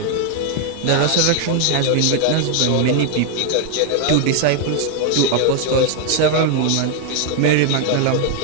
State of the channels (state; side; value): different; both; correlation 0.00